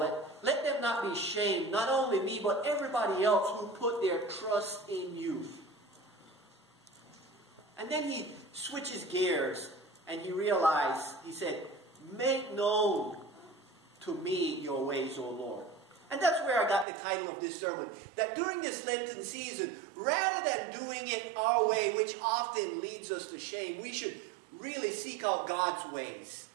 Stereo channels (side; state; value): left; drops out; at 16.9 s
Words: let them not be shamed, not only me, but everybody else who put their trust in you. And then he switches gears, and he said, make known to me your ways, O Lord. And that's where I got the title of this sermon. That during this Lenten season, rather than doing it our way, which often leads us to shame, we should really seek out God's ways.